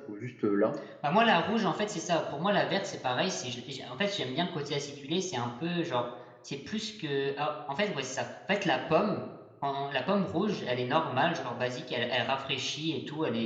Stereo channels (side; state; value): both; identical; correlation 1.00